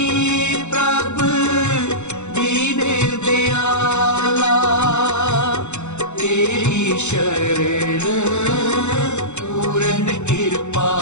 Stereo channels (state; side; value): late; right; 0.83 ms